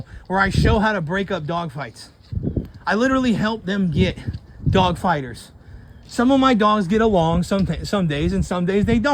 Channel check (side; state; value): both; identical; correlation 1.00